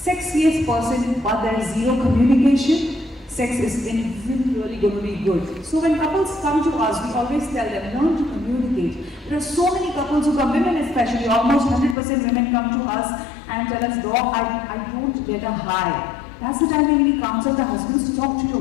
person, but there is zero communication, sex isn't really going to be good. So when couples come to us, we always tell them, learn to communicate. There are so many couples who come, women especially, almost 100% women come to us and tell us, Doc, I don't get a high. That's the time when we counsel the husbands to talk to your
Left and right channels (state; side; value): drops out; right; at 12.0 s